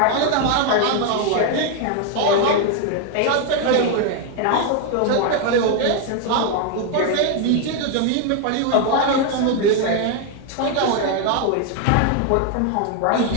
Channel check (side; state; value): both; different; correlation 0.01